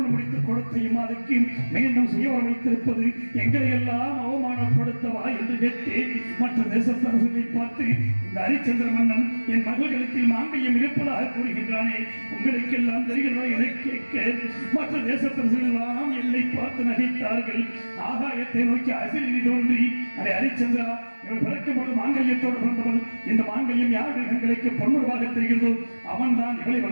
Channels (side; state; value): both; inverted; correlation -1.00